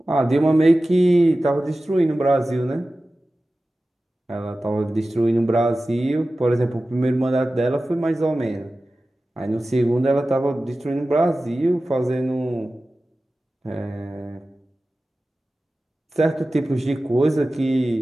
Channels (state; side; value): normal; both; correlation 0.95